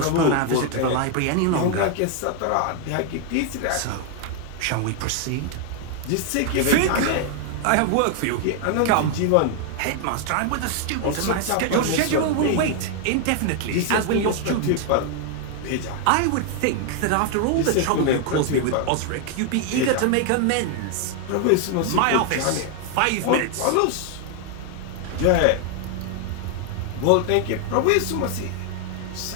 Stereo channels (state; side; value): different; both; correlation 0.00